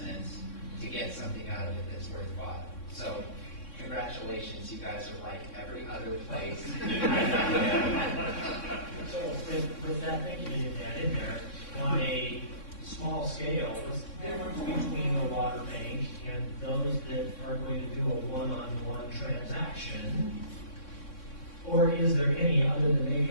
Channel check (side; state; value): right; late; 3.6 ms